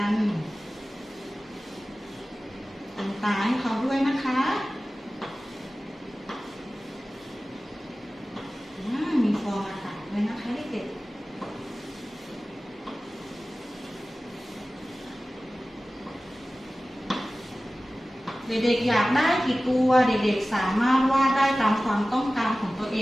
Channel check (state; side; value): normal; both; correlation 0.97